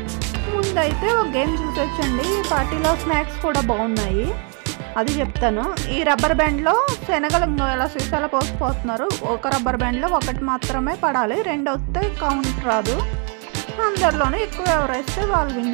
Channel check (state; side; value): quieter; left; 36.9 dB